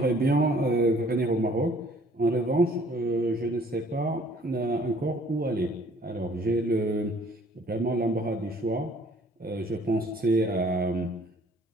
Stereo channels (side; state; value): both; normal; correlation 0.57